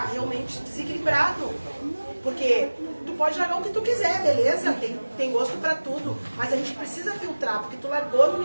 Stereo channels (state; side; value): inverted; both; correlation -1.00